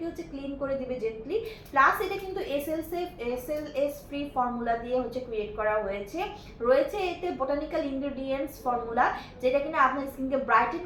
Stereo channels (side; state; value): both; identical; correlation 1.00